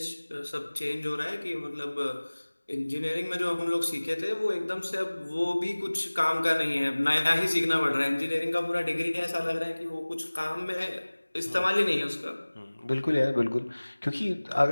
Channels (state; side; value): inverted; both; correlation -1.00